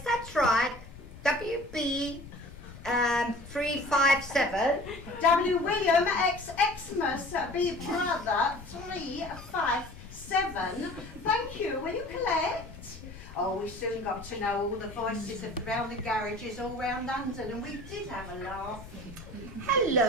that's right. WB 357. W. William X. Xmas B. Brother 357. Thank you. Will you collect? Oh, we soon got to know all the voices around the garages all round London, and we did have a laugh.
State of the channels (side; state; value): left; noise; rumble, 16 dB below the sound